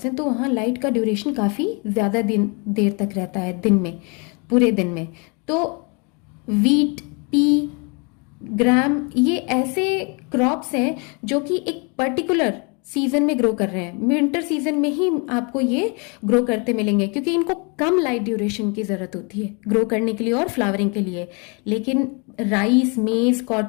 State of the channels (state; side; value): quieter; right; 33.1 dB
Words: हैं तो वहाँ लाइट का ड्यूरेशन काफ़ी ज़्यादा देर तक रहता है, दिन में, पूरे दिन में। तो वीट, पी, ग्राम, ये ऐसे क्रॉप्स हैं जो कि एक पर्टिकुलर सीजन में ग्रो कर रहे हैं, विंटर सीजन में ही आपको ये ग्रो करते मिलेंगे, क्योंकि इनको कम लाइट ड्यूरेशन की ज़रूरत होती है ग्रो करने के लिए और फ्लावरिंग के लिए। लेकिन राइस, मेज,